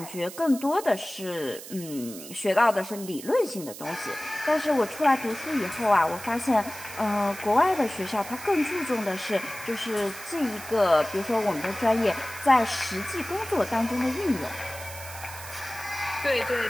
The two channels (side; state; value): right; noise; hiss, 13 dB below the sound